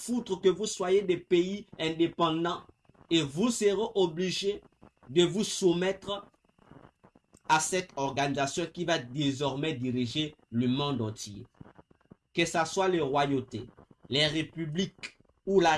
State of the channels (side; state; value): both; identical; correlation 1.00